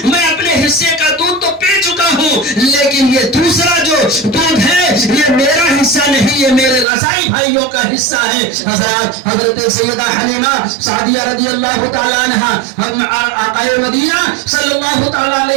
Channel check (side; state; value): left; drops out; at 6.9 s